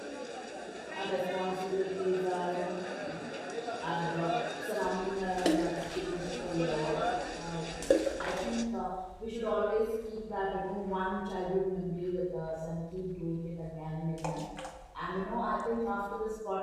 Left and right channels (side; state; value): both; identical; correlation 1.00